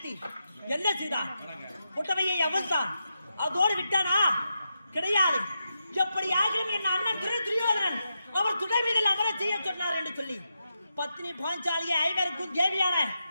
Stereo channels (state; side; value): inverted; both; correlation -0.86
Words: என்ன செய்தான்? புட்டவையை அவிழ்த்தான். அதோடு விட்டானா? கிடையாது. எப்படி ஆகிலும் என் அண்ணன் துரியோதனன் அவர் துணை மீதில் அமர செய்ய சொன்னார் என்று சொல்லி பத்னி பாஞ்சாலியை ஐவருக்கும் தேவியான